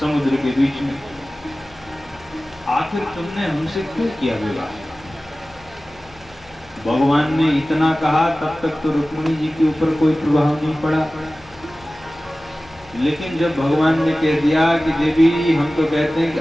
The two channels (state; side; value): noise; left; hum, 25 dB below the sound